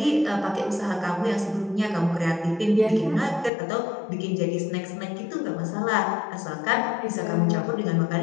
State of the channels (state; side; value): drops out; right; at 3.5 s